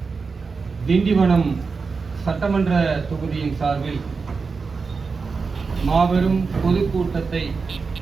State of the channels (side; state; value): left; quieter; 4.8 dB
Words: திண்டிவனம் சட்டமன்ற தொகுதியின் சார்பில் மாபெரும் பொதுக்கூட்டத்தை